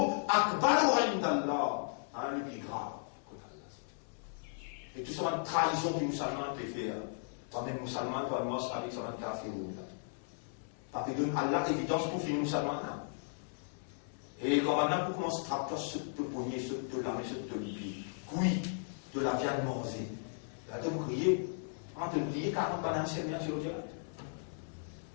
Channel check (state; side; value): silent; right; 54 dB below the other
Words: أكبر عند الله. Le plus grave. Et tout ça, une trahison du musulman te fait. Toi-même musulman, toi, moi, avec ça, un kafir. Parce que donne Allah évidence pour finir ça maintenant. Et quand maintenant pour commencer à trapper ce te pogner, ce te lamer, ce te lier, oui, de la viande mangée. Là, tu me crier, en te crier 40 bananes sur le direct.